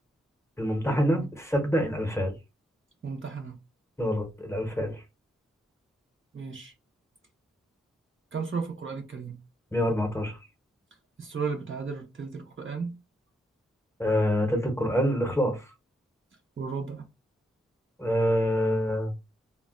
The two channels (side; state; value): both; normal; correlation 0.79